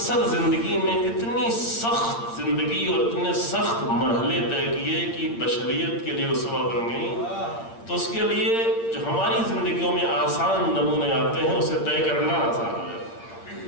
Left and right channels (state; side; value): late; right; 8.7 ms